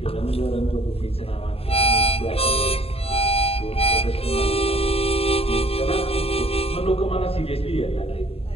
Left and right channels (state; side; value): late; right; 0.28 ms